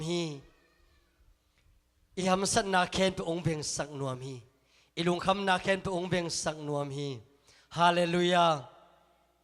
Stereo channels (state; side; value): identical; both; correlation 1.00